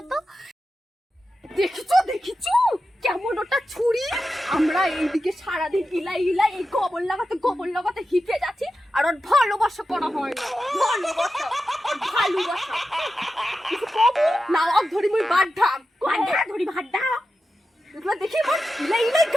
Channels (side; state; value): both; normal; correlation 0.91